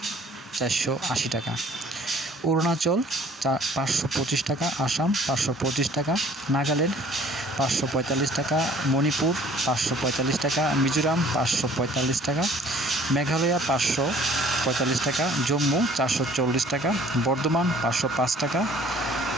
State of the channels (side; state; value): both; normal; correlation 0.54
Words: 480 টাকা, অরুণাচল 525 টাকা, আসাম 525 টাকা, নাগাল্যান্ড 545 টাকা, মণিপুর 545 টাকা, মিজোরাম 545 টাকা, মেঘালয় 545 টাকা, জম্মু 440 টাকা, বর্ধমান 505 টাকা,